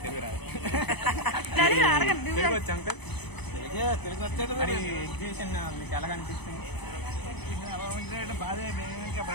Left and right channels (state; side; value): late; right; 0.99 ms